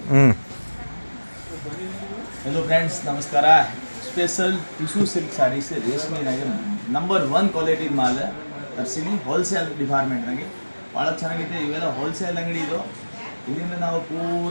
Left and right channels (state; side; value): inverted; both; correlation -1.00